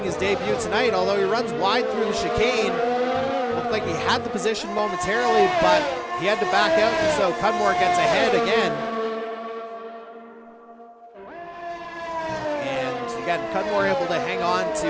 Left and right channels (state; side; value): identical; both; correlation 1.00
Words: his debut tonight, although he runs wide through the chicane. Looked like he had the position momentarily, but he had to back out, and so Cudmore gets ahead again. And again, Cudmore able to hang on to